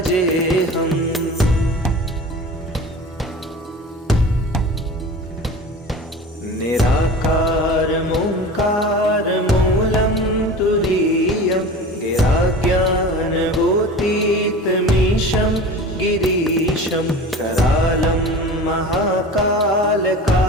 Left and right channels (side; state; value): both; normal; correlation 0.36